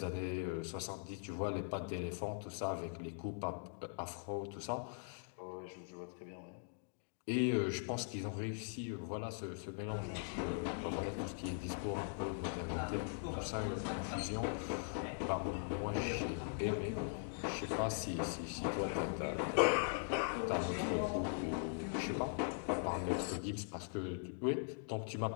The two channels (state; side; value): silent; right; digital silence